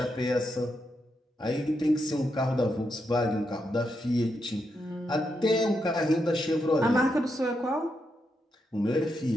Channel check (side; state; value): both; normal; correlation 0.82